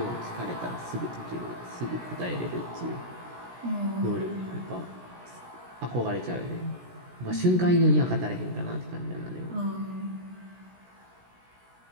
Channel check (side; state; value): left; late; 17 ms